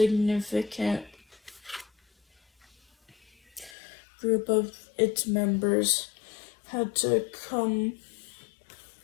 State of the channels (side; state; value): right; drops out; at 3.7 s